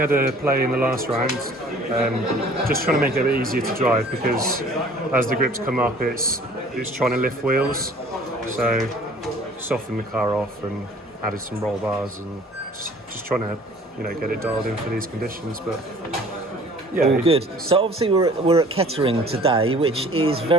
a play in the last round, just trying to make it a bit easier to drive, because as the grips come up, it's trying to lift wheels. So soften the car off and added some roll bars and just trying to get it dialed in for these conditions. But yeah, all good. So obviously we're at Kettering today, which is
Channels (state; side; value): normal; both; correlation 0.51